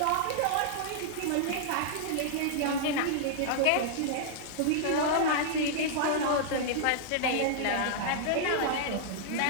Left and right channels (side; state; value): both; different; correlation -0.01